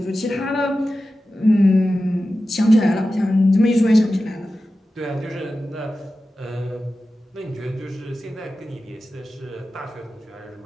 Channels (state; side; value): normal; both; correlation 0.94